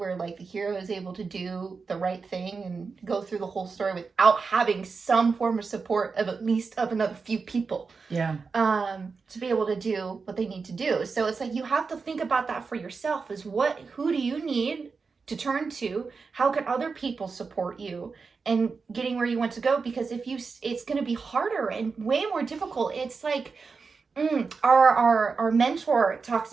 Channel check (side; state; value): left; quieter; 4.8 dB